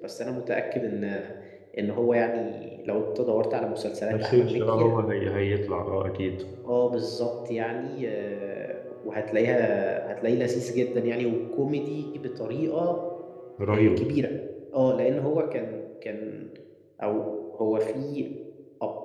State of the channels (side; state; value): both; identical; correlation 1.00